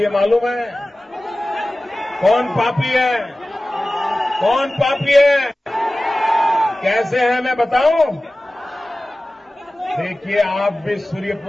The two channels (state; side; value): normal; both; correlation 0.97